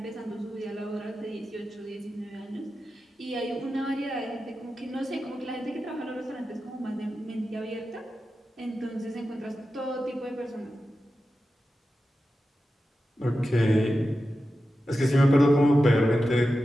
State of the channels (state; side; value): normal; both; correlation 0.92